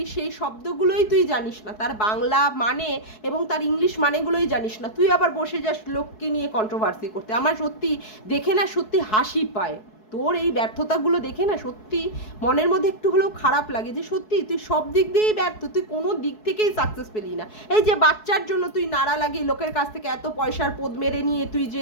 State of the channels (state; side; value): late; right; 4.7 ms